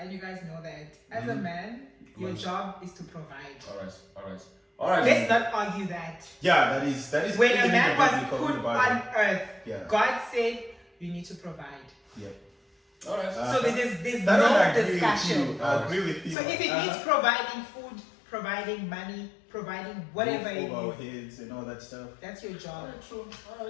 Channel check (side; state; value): right; drops out; at 16.4 s